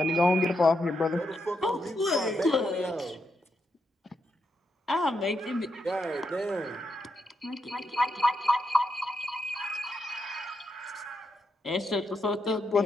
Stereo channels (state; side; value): normal; both; correlation 0.81